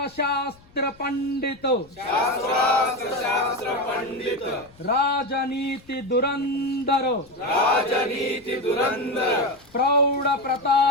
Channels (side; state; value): left; noise; rumble, 28 dB below the sound